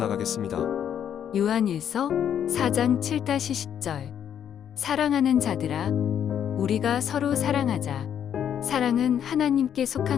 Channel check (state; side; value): quieter; right; 9.2 dB